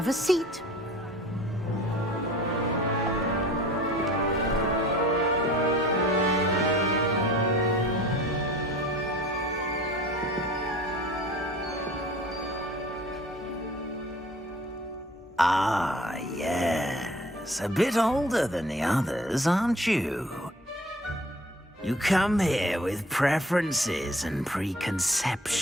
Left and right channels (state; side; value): normal; both; correlation 0.48